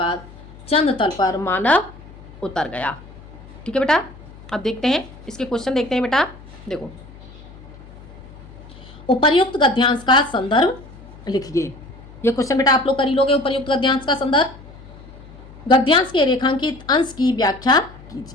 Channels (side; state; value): left; noise; hum, 19 dB below the sound